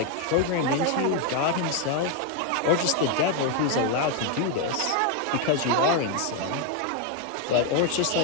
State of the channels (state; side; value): different; both; correlation 0.01